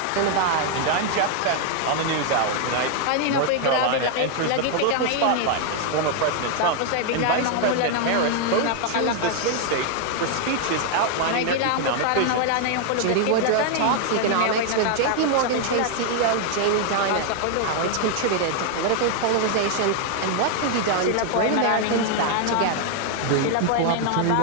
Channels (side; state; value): both; different; correlation 0.00